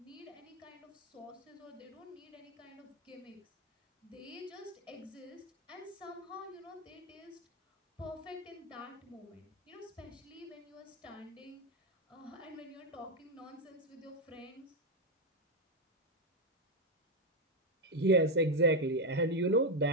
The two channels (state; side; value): normal; both; correlation 0.05